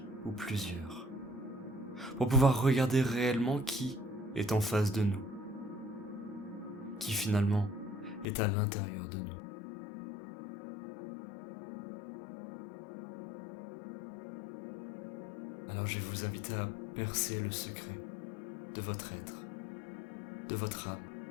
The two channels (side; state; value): right; drops out; at 8.2 s